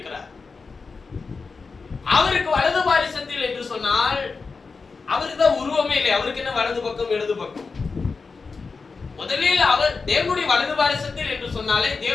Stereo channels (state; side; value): quieter; right; 4.6 dB